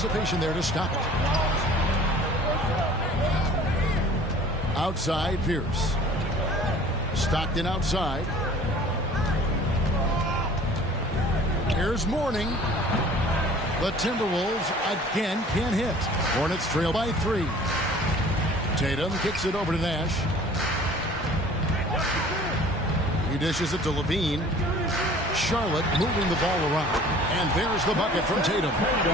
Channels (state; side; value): normal; both; correlation 0.48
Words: there to stop it. Outside, Pierce. Stockton outside. Here's Mourning. The Timberwolves again can't hit. Hornets trail by 3. Tatum kicks it over to Nash. He dishes it to Levine. Charlotte moving the ball around. And there's the bucket from Tatum.